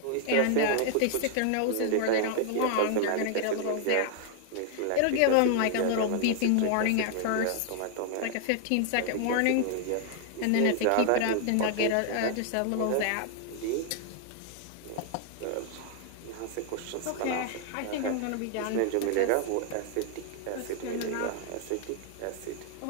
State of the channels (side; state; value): both; different; correlation 0.00